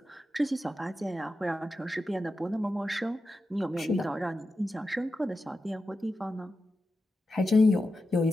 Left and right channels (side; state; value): both; normal; correlation 0.90